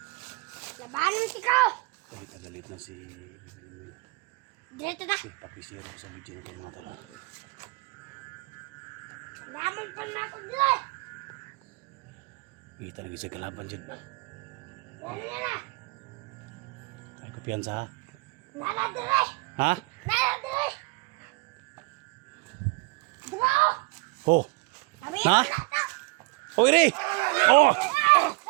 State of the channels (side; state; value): left; quieter; 27.8 dB